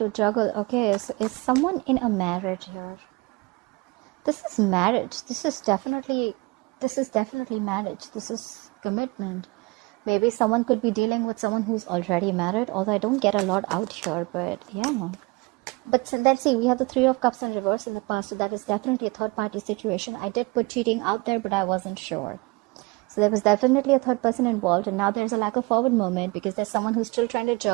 juggle. Okay, so is someone in a marriage here? This is marriage. This is definitely marriage. This is commitment. Maybe someone could be dealing with someone who's already married, although I don't get a lot out here, but yeah. But let's see, we have the Three of Cups in reverse in the past, so that is definitely a third party situation. I did put cheating out there, but I wasn't sure. So there was definitely a third person involved, and now there's a lack of forward movement because there's someone who's still trying to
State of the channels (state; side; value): quieter; left; 25.6 dB